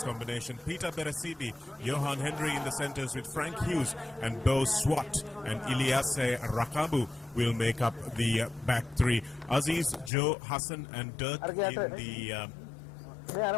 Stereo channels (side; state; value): right; drops out; at 10.1 s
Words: combination, Peter Berasibi, Johan Henry in the centres with Frank Hughes and Bo Swat, and Ilyase Rakabu will make up the back three. Aziz, Joe, Hassan and Dirk in the